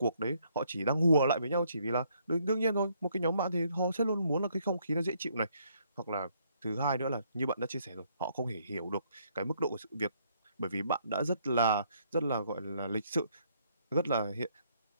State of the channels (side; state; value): both; inverted; correlation -0.69